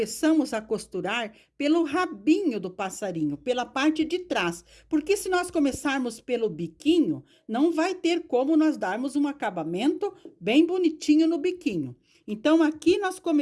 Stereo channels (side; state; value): both; identical; correlation 1.00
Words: a costurar pelo rabinho do passarinho, pela parte de trás. Porque se nós começarmos pelo biquinho, não vai ter como nós darmos um acabamento bem bonitinho no biquinho. Então, aqui nós